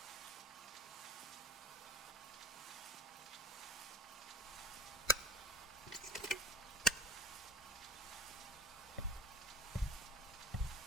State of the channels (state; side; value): normal; both; correlation 0.39